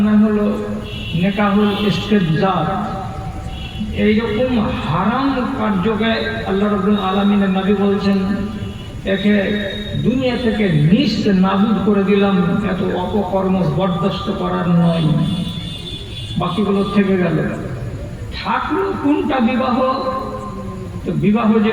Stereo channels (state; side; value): identical; both; correlation 1.00